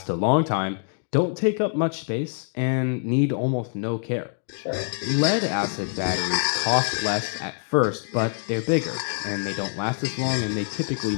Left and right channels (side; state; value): right; silent; digital silence